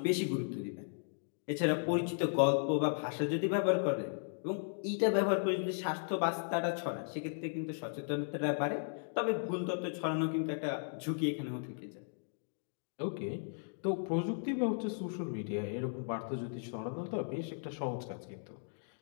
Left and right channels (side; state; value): right; silent; digital silence